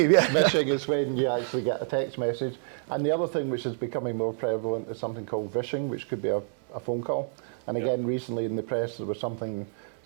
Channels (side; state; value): left; silent; digital silence